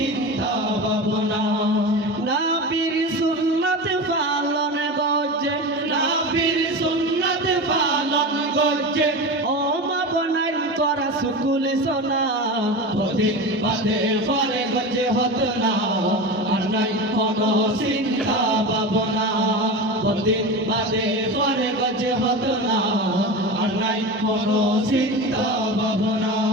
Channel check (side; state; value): both; normal; correlation 0.26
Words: ভাবনা নবীর সুন্নাত পালন গজে নবীর সুন্নাত পালন গজে ও মা বনাই তোরা সুকুল সোনা বহুদিন বাদে পরে গজে হতো না আর নাই কোনো চিন্তা ভাবনা বহুদিন বাদে পরে গজে হতো না আর নাই কোনো চিন্তা ভাবনা